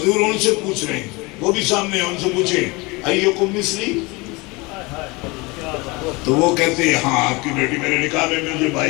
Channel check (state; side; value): quieter; right; 25.2 dB